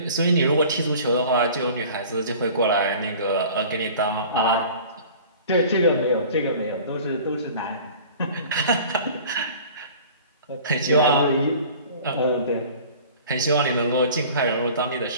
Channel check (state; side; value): inverted; both; correlation -0.45